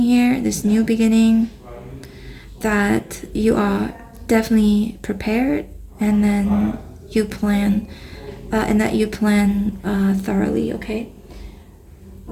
here, this new beginning, that you are definitely prepared, and then you plan, thoroughly, okay?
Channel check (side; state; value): both; identical; correlation 1.00